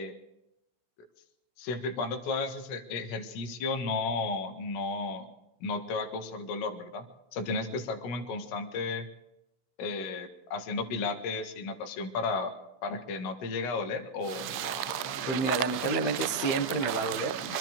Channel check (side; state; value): right; late; 15 ms